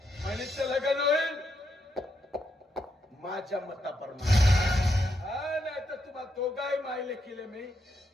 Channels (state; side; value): normal; both; correlation 0.80